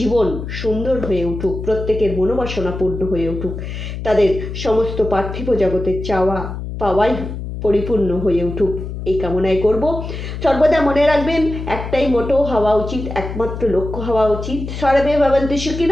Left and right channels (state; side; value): noise; left; hum, 7 dB below the sound